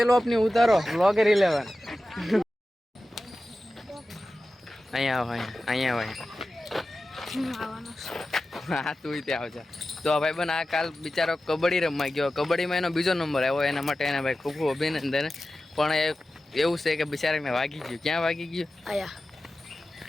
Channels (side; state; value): both; normal; correlation 0.94